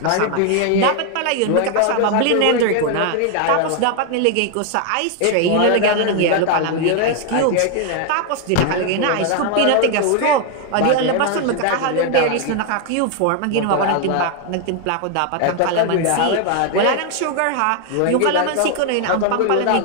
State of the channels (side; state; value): both; different; correlation 0.01